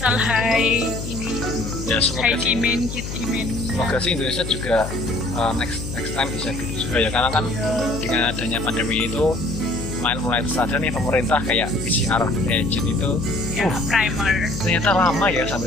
high ini, Ya semoga high sih, demand, kit demand. semoga sih Indonesia juga next time bisa gitu juga ya, karena kan dengan adanya pandemi itu mulai sadar nih pemerintah kayak PCR agent itu Ya, primer. ternyata lama ya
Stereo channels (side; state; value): left; noise; hum, 7 dB below the sound